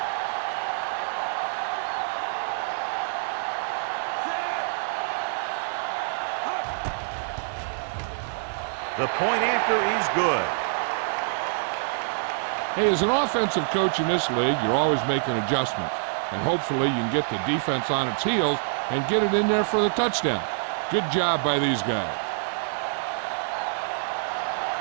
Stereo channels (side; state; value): left; silent; digital silence